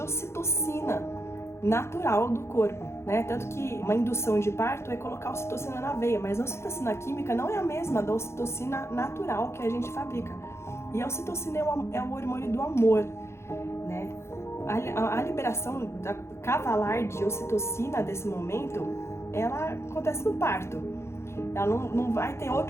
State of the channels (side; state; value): right; late; 0.13 ms